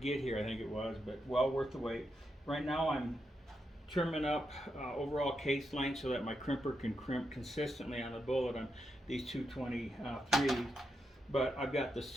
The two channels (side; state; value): both; normal; correlation 0.84